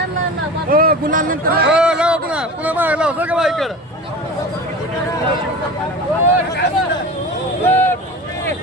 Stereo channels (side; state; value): both; normal; correlation 0.33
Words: गुलाल नंतर पुन्हा मागे लाव सगळं बाईकडं